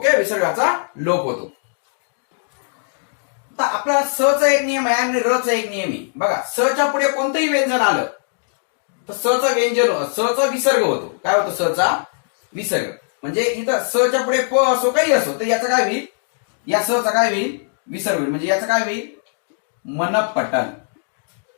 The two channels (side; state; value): right; silent; digital silence